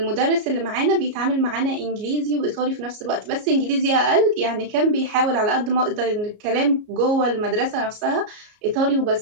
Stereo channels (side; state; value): left; late; 33 ms